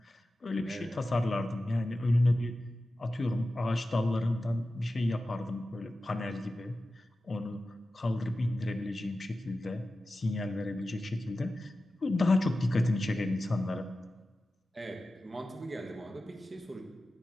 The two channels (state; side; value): normal; both; correlation 0.94